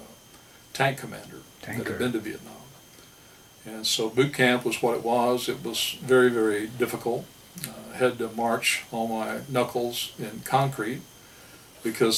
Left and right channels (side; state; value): both; identical; correlation 1.00